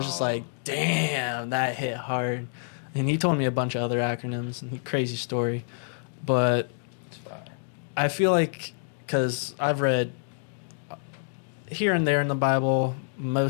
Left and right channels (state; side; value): silent; right; digital silence